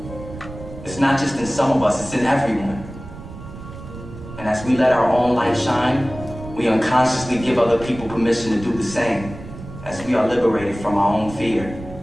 It's not just in some of us, it's in everyone. And as we let our own light shine, we unconsciously give other people permission to do the same. As we are liberated from our own fear,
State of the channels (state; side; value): noise; right; rumble, 13 dB below the sound